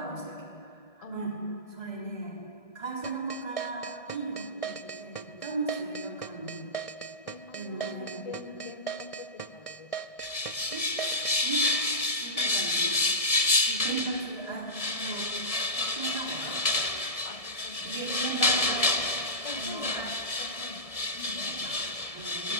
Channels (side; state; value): right; late; 1.7 ms